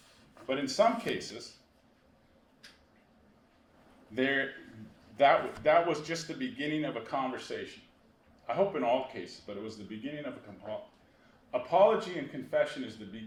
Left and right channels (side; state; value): both; identical; correlation 1.00